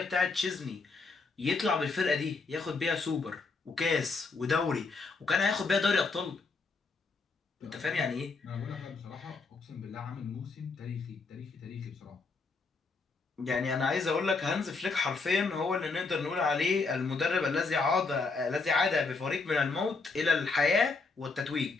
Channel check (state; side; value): quieter; right; 4.2 dB